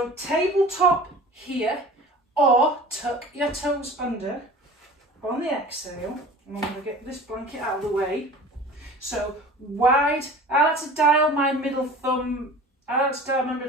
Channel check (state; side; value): normal; both; correlation 0.41